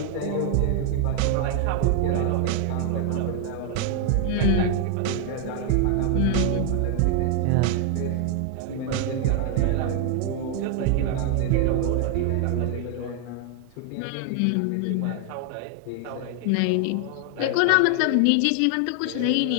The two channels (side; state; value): both; different; correlation 0.00